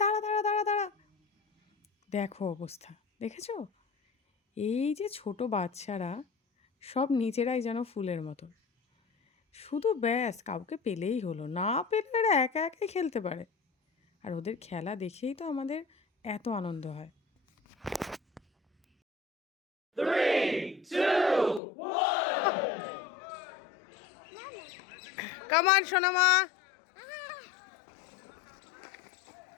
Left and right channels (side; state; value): right; drops out; at 21.6 s